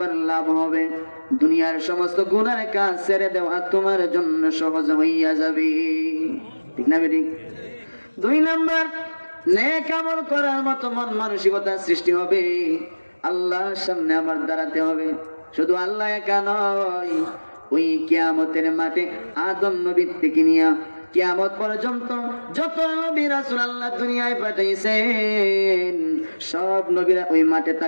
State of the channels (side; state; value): both; inverted; correlation -1.00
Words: লাভ হবে, দুনিয়ার সমস্ত গুনার কাজ ছেড়ে দেওয়া তোমার জন্য সহজ হইয়া যাবে। ঠিক না বেঠিক? দুই নাম্বার, নেক আমল করার মতো মন মানসিকতা সৃষ্টি হবে। আল্লাহর সামনে আমার দাঁড়াতে হবে, শুধু আল্লাহ একা নয়, ওই কিয়ামতের মাঠে আদম নবী থেকে নিয়ে কিয়ামত পর্যন্ত যত নবী রাসূল আল্লাহ দুনিয়ায় পাঠাইছেন সব নবীরা ওই মাঠে